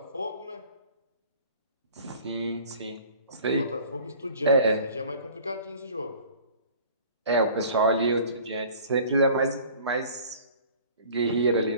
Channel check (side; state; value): both; inverted; correlation -0.48